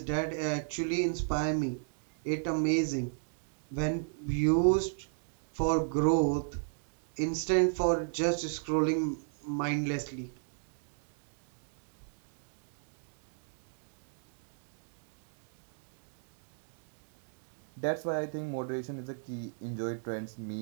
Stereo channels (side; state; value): left; silent; digital silence